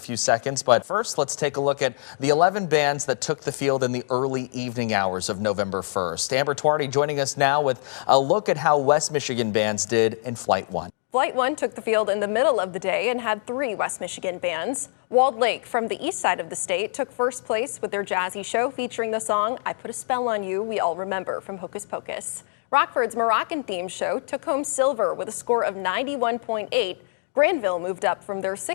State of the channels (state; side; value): silent; right; digital silence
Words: seconds. But first, let's take a look at the 11 bands that took the field in the early evening hours of November 1st. Amber Twardy joining us now with a look at how West Michigan bands did in Flight 1. Flight 1 took the field in the middle of the day and had 3 West Michigan bands. Walled Lake from the east side of the state took first place with their jazzy show featuring the song I Put a Spell on You we all remember from Hocus Pocus. Rockford's Moroccan-themed show took home silver with a score of 91.8. Granville moved up from their